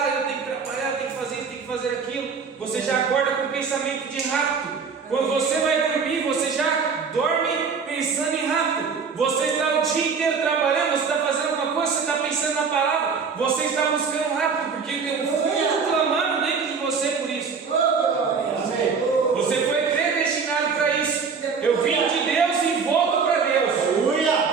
tenho que trabalhar, eu tenho que fazer isso, tenho que fazer aquilo. Você já acorda com pensamento de rapto. Quando você vai dormir, você já dorme pensando em rapto. Você está o dia inteiro trabalhando, você está fazendo alguma coisa, você está pensando na palavra, você está buscando rapto, porque tem um fogo clamando dentro de você por isso. Você foi predestinado para isso. Eu vim de Deus e volto para Deus.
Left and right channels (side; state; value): left; quieter; 5.6 dB